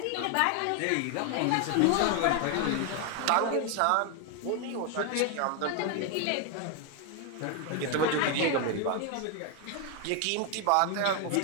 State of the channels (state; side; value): different; both; correlation 0.01